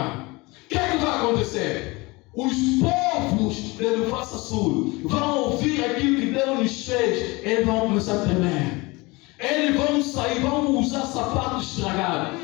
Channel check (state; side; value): quieter; right; 24.1 dB